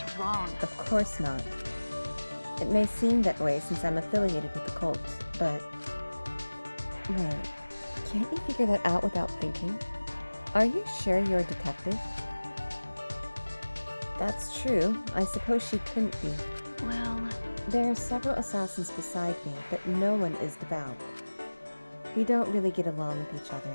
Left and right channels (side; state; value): both; inverted; correlation -1.00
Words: wrong. Of course not. It may seem that way since I'm affiliated with the cult, but... Wait, can't you figure that out without thinking? Are you sure you're a detective? That's true. I suppose she couldn't be. Well... There are several assassins beside me, but no one is devout. We don't really get along with each other